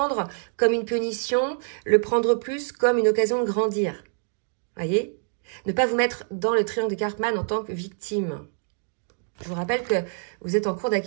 comme une punition, le prendre plus comme une occasion de grandir. Vous voyez? Ne pas vous mettre dans le triangle de Karpman en tant que victime. Je vous rappelle que vous êtes en cours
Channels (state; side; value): silent; left; 59 dB below the other